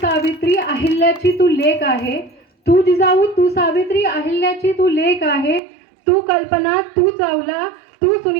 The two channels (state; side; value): drops out; left; at 5.6 s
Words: अहिल्याची तू लेक आहे, तू जिजाऊ तू सावित्री अहिल्याची तू लेक आहे, तू कल्पना तू चावला तू